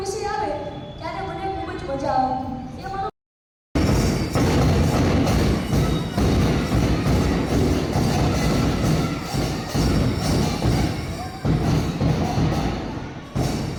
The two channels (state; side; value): identical; both; correlation 1.00